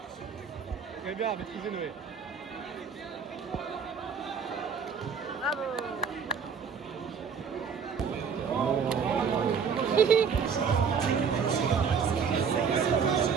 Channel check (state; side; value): quieter; left; 6.3 dB